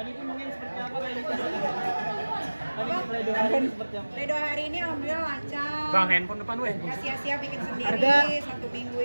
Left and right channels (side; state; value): both; inverted; correlation -1.00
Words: mungkin seperti apa Pledoi hari ini alhamdulillah lancar. Bang, handphone depan weh. Gak sia-sia bikin sendiri 1 minggu